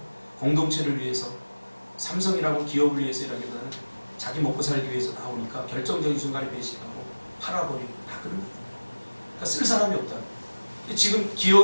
공동체를 위해서 삼성이라고 기업을 위해서 일하기보다는 자기 먹고 살기 위해서 나오니까 결정적인 순간에 배신하고 팔아버리고 다 그런 거예요. 그러니까 쓸 사람이 없다. 지금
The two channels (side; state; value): both; inverted; correlation -1.00